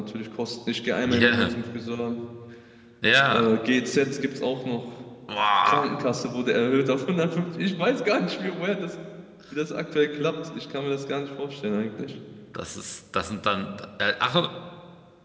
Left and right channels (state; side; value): identical; both; correlation 1.00